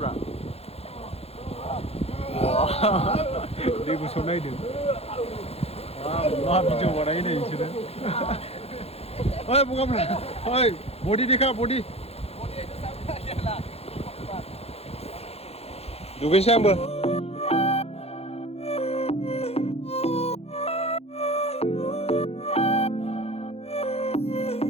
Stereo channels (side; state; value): right; late; 0.29 ms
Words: दै गुसुआव नायदो मा भिडिअ बानायो नै बिसोरो ओइ बगाफ्रा ओइ बडि देखा बडि दुगैनोसै आंबो